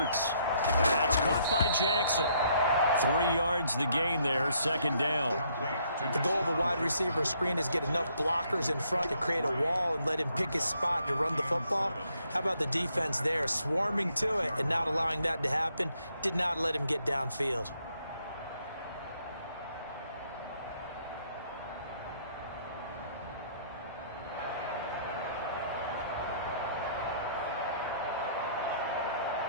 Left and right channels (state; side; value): inverted; both; correlation -0.69